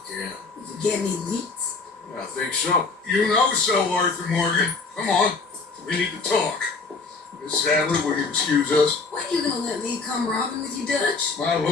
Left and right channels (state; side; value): quieter; right; 4.2 dB